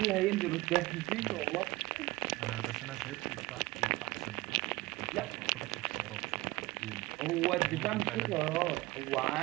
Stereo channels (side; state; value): left; quieter; 20.8 dB